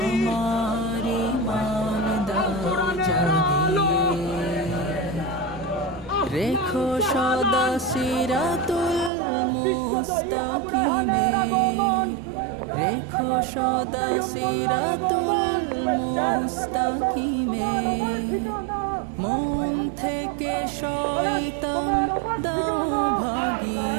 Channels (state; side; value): drops out; left; at 9.1 s